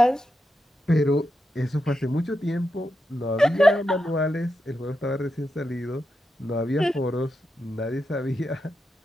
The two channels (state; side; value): normal; both; correlation 0.87